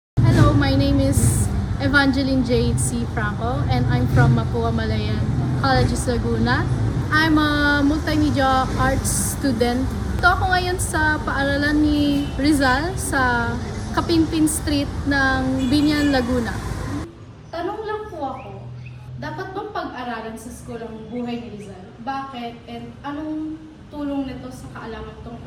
my name is Evangeline Jade C. Franco and I'm from Mapua Malayan Colleges Laguna. I'm a multimedia arts student. Ito ako ngayon sa paaralan ni Rizal sa Kapimpin Street ng Binyan, Laguna. Tanong lang po ako, dapat bang pag-aralan sa school ang buhay ni Rizal? Bakit? And anong tulong nito sa kaalaman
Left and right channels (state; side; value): identical; both; correlation 1.00